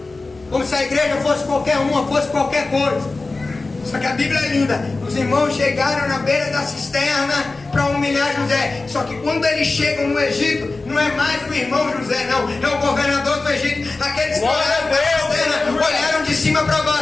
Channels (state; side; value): quieter; right; 3.5 dB